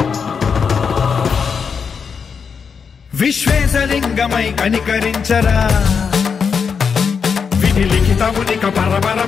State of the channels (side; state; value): right; quieter; 6.1 dB